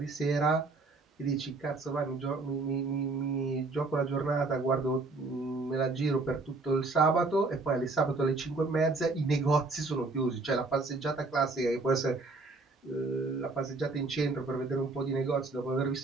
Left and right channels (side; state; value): left; quieter; 3.5 dB